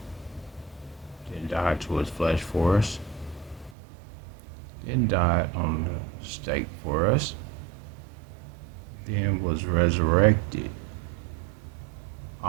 then died to his flesh for us, then died on the stake for us, then was resurrected,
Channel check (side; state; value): left; drops out; at 3.8 s